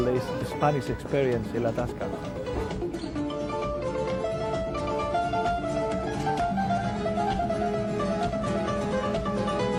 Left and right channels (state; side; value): identical; both; correlation 1.00